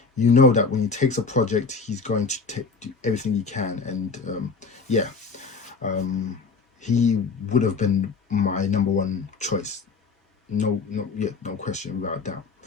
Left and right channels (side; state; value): right; quieter; 4.7 dB